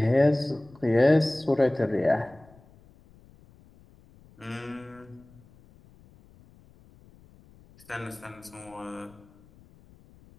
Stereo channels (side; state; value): left; noise; rumble, 26 dB below the sound